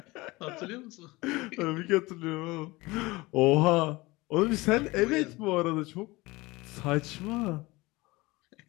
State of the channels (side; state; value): right; quieter; 21.9 dB